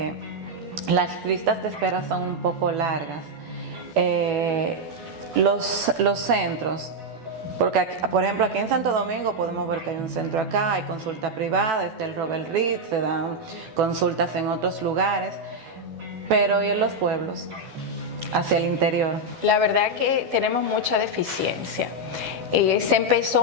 las listas de espera son un poco largas. Los centros, porque por ejemplo aquí en Santo Domingo podemos ver que hay un centro acá, hay consulta privada, está el Robert Reed, se dan consultas en otros lugares, pero ¿y en los pueblos? Hacia el interior. La verdad que tenemos mucha deficiencia. Se empezó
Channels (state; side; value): late; left; 12 ms